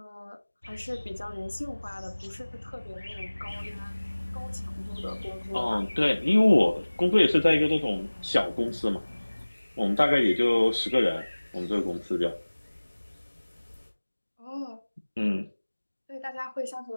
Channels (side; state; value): both; inverted; correlation -1.00